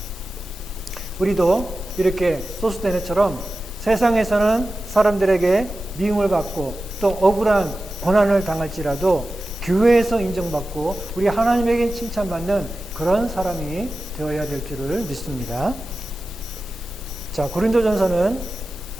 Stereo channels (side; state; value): both; normal; correlation 0.94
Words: 우리도 이렇게 소스테네처럼 세상에서는 사람들에게 미움을 받고 또 억울한 고난을 당할지라도 교회에서 인정받고 우리 하나님에게 칭찬받는 그런 사람이 되어야 될 줄을 믿습니다. 자, 고린도전서는